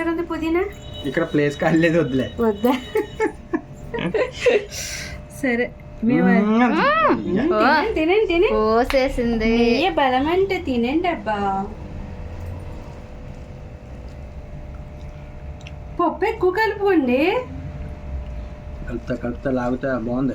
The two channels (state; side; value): identical; both; correlation 1.00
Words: ఉంది, పుదీనా. ఇక్కడ ప్లేస్ కాలేదు, వద్దులే. వద్దా? సరే తినండి తిని పోసేసింది. నెయ్యి బలం అంటే తినండి అబ్బా. పప్పు ఎక్కువ కలుపుకోండి. కలుపుతా లాగుతా.